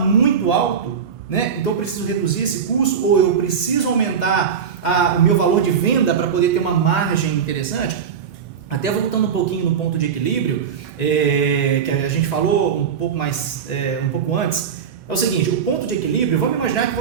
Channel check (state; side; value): quieter; left; 7.1 dB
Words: alto, né? Então eu preciso reduzir esse custo ou eu preciso aumentar o meu valor de venda para poder ter uma margem interessante. Até voltando um pouquinho no ponto de equilíbrio, que a gente falou um pouco antes, é o seguinte, o ponto de equilíbrio, vamos imaginar que